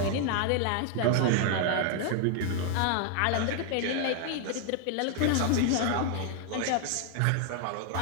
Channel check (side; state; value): both; different; correlation 0.00